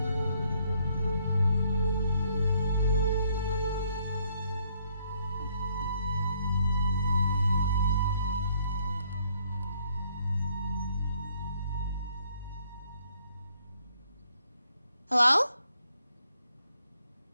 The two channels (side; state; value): both; inverted; correlation -0.68